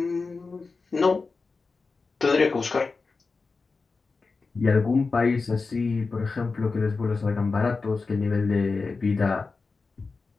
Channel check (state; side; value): quieter; right; 4.2 dB